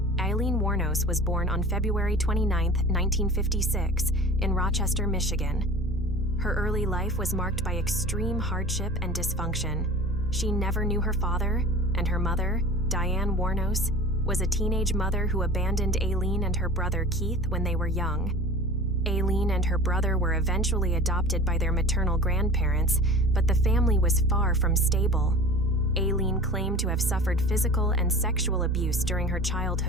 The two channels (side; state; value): both; normal; correlation 0.39